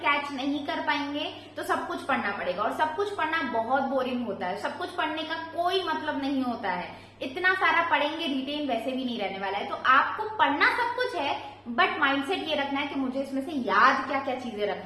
नहीं कर पाएंगे तो सब कुछ पढ़ना पड़ेगा, और सब कुछ पढ़ना बहुत बोरिंग होता है। सब कुछ पढ़ने का कोई मतलब नहीं होता है। इतना सारा पढ़ेंगे, रिटेन वैसे भी नहीं रहने वाला है। तो आपको पढ़ना सब कुछ है, बट माइंडसेट ये रखना है कि मुझे इसमें से याद क्या क्या चीजें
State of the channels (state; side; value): identical; both; correlation 1.00